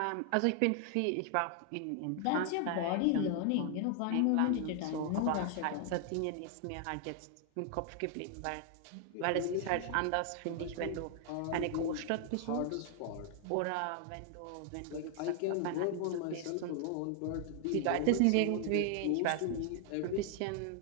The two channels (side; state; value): both; different; correlation 0.00